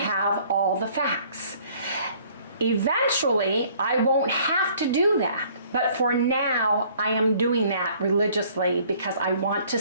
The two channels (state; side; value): inverted; both; correlation -0.58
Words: all the facts. Eventually, I won't have to do that. But for now, I am doing that religiously because I want to